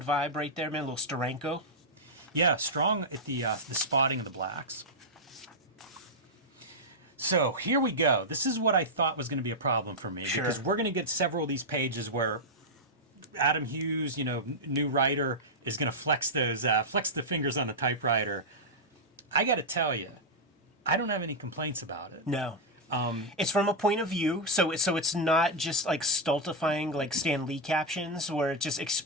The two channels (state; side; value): normal; both; correlation -0.04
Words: vibe right there, man. A little Steranko. Yeah, strong at the spotting of the blacks. So here we go. This is what I thought was going to be a problem for me, because we're going to get several of these pages where Adam Hughes, you know, new writer, is going to flex the fingers on the typewriter. I got to tell you, I don't have any complaints about it. No. It's from a point of view, so it's not just like stultifying like Stan Lee captions where it's just